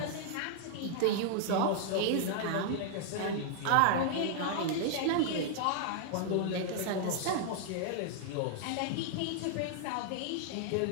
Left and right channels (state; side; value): different; both; correlation 0.00